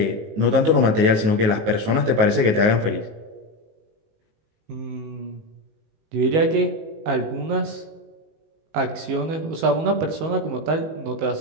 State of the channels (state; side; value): late; left; 19 ms